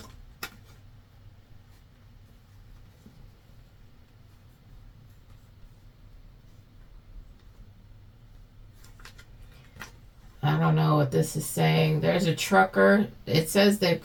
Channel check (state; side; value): identical; both; correlation 1.00